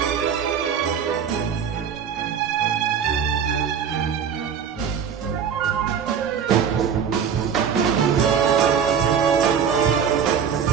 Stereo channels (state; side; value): quieter; left; 7.5 dB